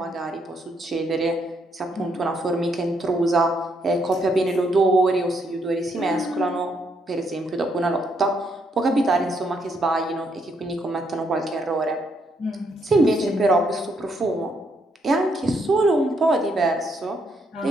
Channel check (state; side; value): normal; both; correlation 0.74